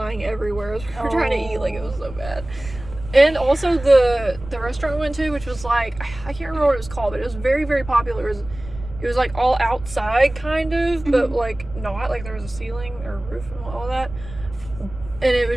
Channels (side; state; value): right; noise; rumble, 14 dB below the sound